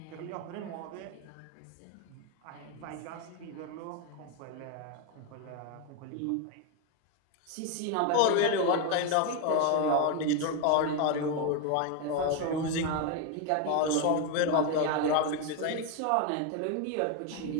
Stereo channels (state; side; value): different; both; correlation 0.02